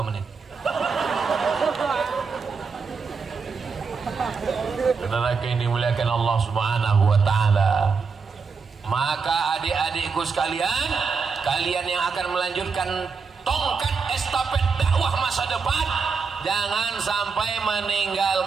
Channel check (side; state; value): left; quieter; 5.2 dB